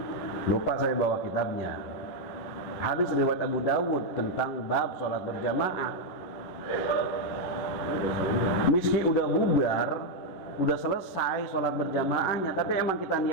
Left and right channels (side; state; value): right; late; 11 ms